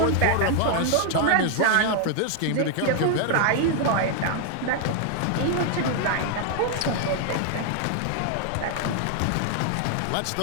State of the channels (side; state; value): both; different; correlation 0.00